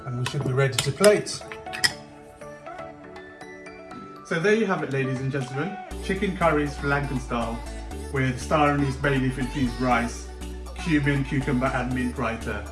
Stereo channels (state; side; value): identical; both; correlation 1.00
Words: and we should be ready to plate. So there you have it, ladies and gentlemen. Chicken curry Sri Lankan style with star anise bay leaf infused rice, cumin, cucumber and mint raita.